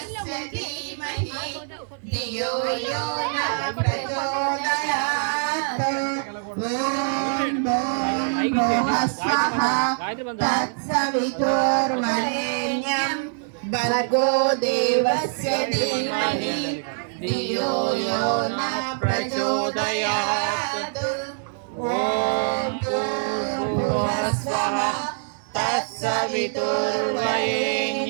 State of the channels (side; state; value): left; silent; 63 dB below the other